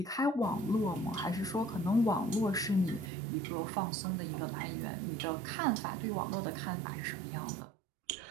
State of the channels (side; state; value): left; drops out; at 3.1 s